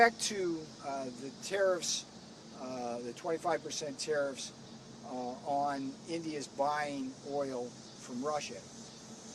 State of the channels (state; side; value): identical; both; correlation 1.00